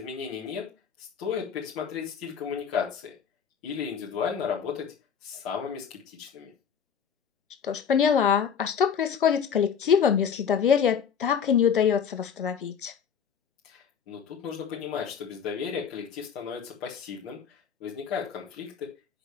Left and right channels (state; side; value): quieter; right; 7.3 dB